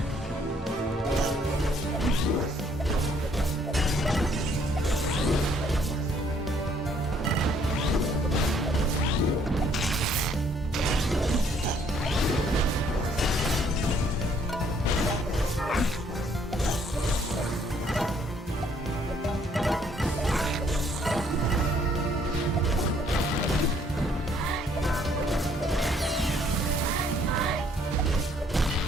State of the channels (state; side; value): normal; both; correlation 0.64